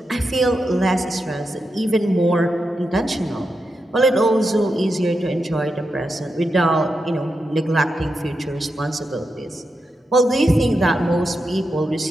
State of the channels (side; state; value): both; normal; correlation 0.87